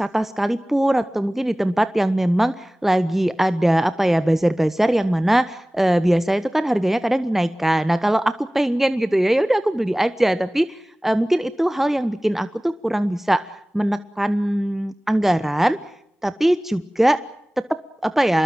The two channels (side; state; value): both; normal; correlation 0.98